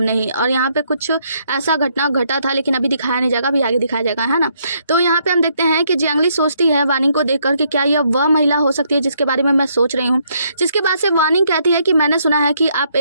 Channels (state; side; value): inverted; both; correlation -0.72